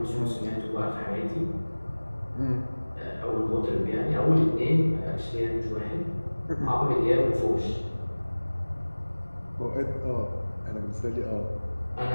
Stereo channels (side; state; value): both; inverted; correlation -1.00